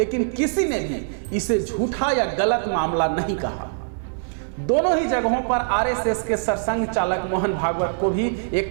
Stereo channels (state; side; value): silent; left; digital silence